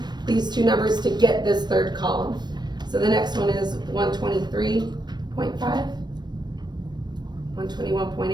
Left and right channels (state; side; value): late; left; 0.21 ms